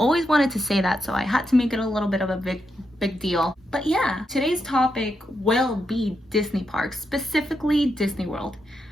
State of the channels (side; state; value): both; normal; correlation 0.83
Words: wanted to say that, so I had to make it a little bit of a big deal. But yeah, today's topic will be Disney parks, specifically Disney World.